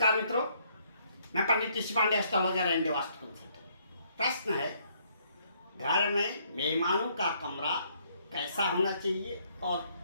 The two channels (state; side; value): inverted; both; correlation -0.68